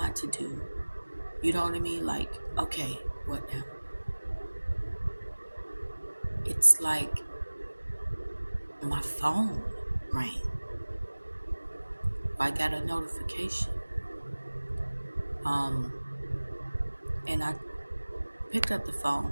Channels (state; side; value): inverted; both; correlation -1.00